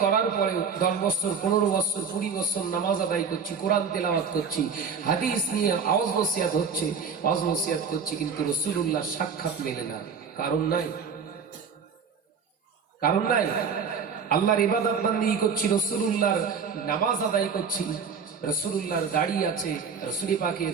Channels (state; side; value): quieter; left; 6.0 dB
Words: করার পরে 10 বছর, 15 বছর, 20 বছর নামাজ আদায় করছি, কোরআন তেলাওয়াত করছি, হাদিস নিয়ে আওয়াজ নসিহত হচ্ছে, আওয়াজ নসিহত করছি, কিন্তু রাসূলুল্লাহর সাক্ষাৎ মেলে না। কারণ নাই, কারণ নাই। আল্লাহর ইবাদত বান্দি করছি, রাসূলুল্লাহর নামাজ আদায় করছি, রাসূলুল্লাহর দাড়ি আছে, রাসূল